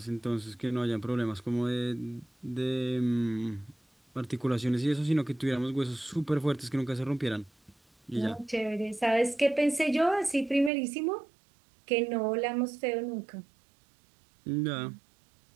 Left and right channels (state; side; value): drops out; left; at 10.7 s